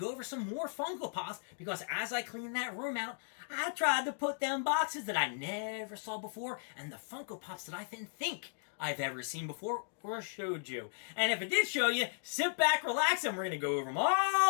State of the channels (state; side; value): silent; right; digital silence